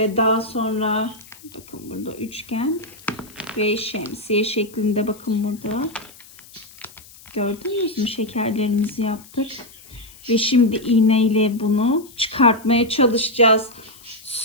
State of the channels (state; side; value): noise; left; hiss, 22 dB below the sound